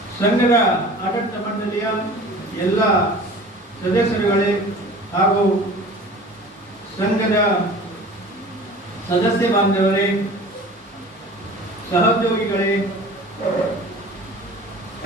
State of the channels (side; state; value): both; normal; correlation 0.42